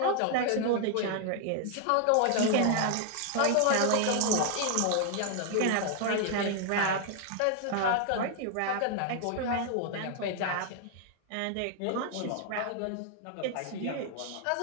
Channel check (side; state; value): both; different; correlation 0.00